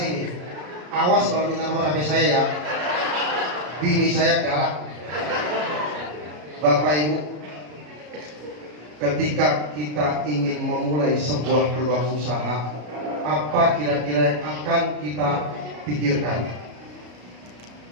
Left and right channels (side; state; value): left; late; 33 ms